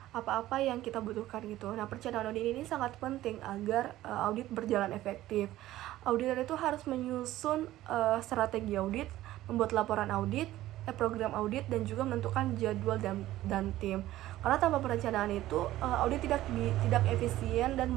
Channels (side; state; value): left; quieter; 15.0 dB